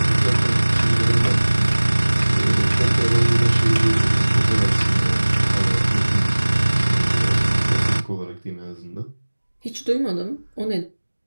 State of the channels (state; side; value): inverted; both; correlation -1.00